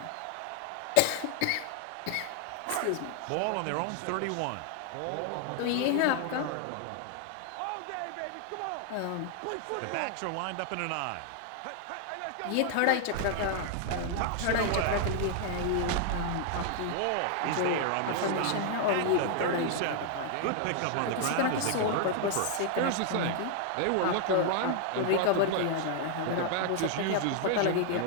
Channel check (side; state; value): both; different; correlation 0.00